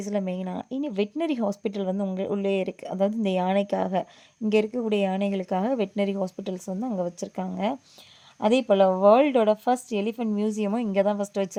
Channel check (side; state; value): both; identical; correlation 1.00